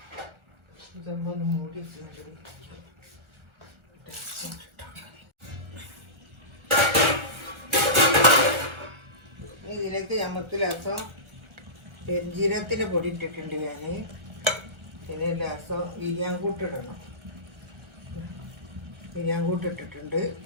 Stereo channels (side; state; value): left; late; 1.4 ms